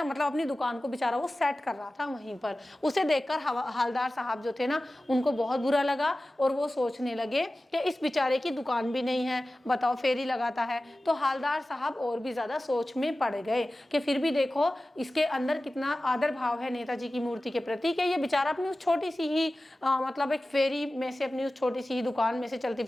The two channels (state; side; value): normal; both; correlation 0.96